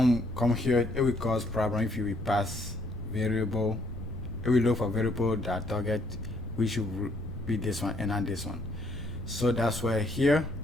we come here, it will cause problem if you will pass variable. It will look for variable that target, which should be this one and not this one. So that's why here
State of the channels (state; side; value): noise; left; rumble, 10 dB below the sound